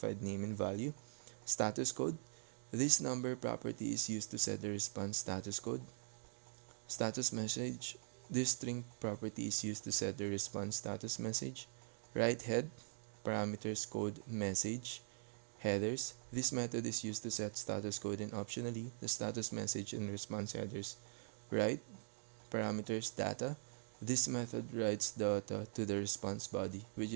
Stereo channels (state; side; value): silent; left; digital silence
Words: name and value. Status code. This number property is used to set the response status code. Status message. This string property is used to set the response status message. Write head, parameters code message, headers. This method is used to set status code and optionally the status message and response headers. Write, parameters data. This method writes data to the response body, which